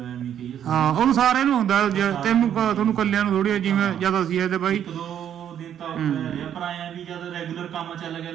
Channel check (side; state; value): left; quieter; 9.7 dB